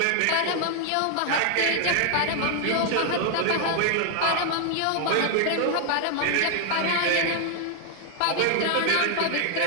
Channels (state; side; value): different; both; correlation 0.00